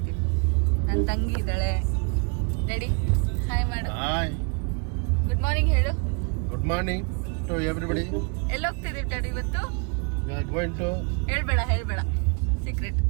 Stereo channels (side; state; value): left; quieter; 35.1 dB